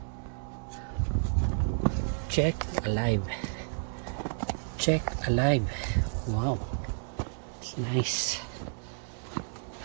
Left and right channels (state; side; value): silent; left; digital silence